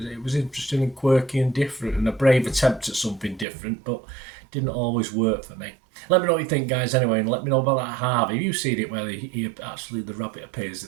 was interesting and quirky and different, and a brave attempt at something different, but didn't always work for me. Let me know what you think, guys, anyway, and let me know about that Harvey. Have you seen it where the rabbit appears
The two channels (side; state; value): left; drops out; at 3.5 s